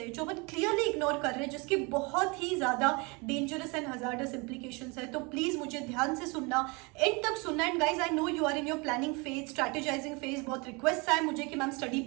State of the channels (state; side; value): quieter; left; 28.6 dB